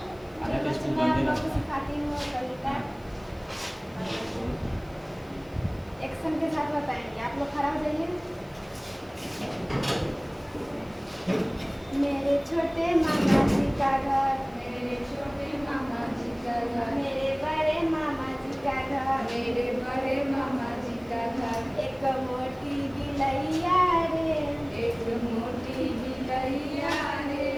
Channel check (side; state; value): left; noise; hiss, 29 dB below the sound